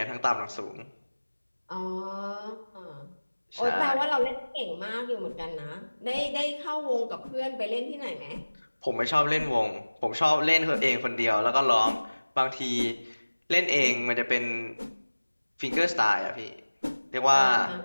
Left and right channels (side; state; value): both; inverted; correlation -1.00